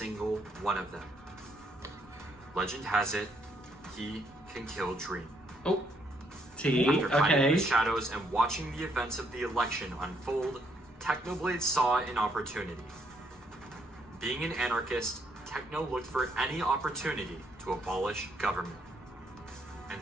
one of them. Legend has it he can kill Dream. Oh. T. After hiding in Okay. the shadows and watching the events of the election unfold, Technoblade saw an opportunity. Being an anarchist, Techno looked for any opportunity to abolish government. And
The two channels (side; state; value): both; normal; correlation 0.71